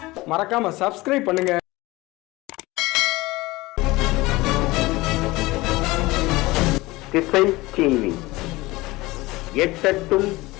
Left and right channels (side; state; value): right; quieter; 20.6 dB